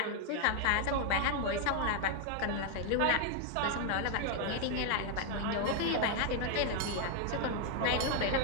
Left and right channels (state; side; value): different; both; correlation 0.01